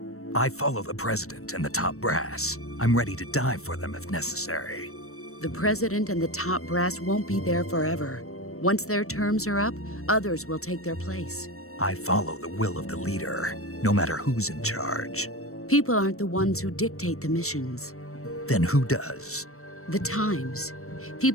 I follow the president and the top brass. I'm ready to die for them if necessary. The president and the top brass won't be there forever. Once their terms are up, others will take their place. I follow the will of the leader, no matter who's in charge. People aren't the ones who dictate the missions. Then who does? The times.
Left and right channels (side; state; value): right; late; 0.63 ms